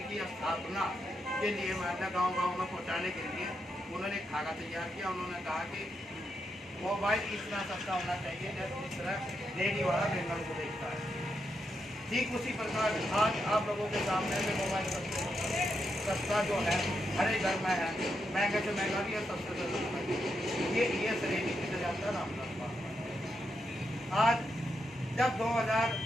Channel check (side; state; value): both; normal; correlation 0.83